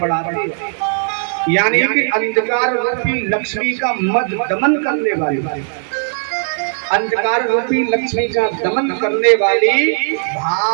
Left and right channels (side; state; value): left; silent; digital silence